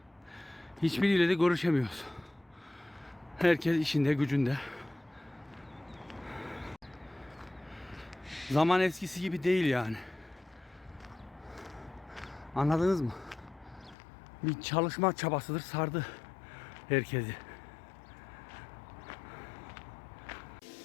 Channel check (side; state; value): right; drops out; at 14.0 s